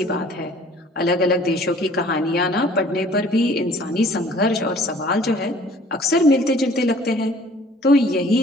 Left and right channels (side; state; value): both; normal; correlation 0.53